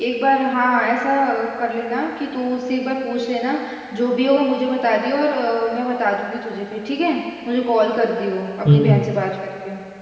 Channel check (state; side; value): identical; both; correlation 1.00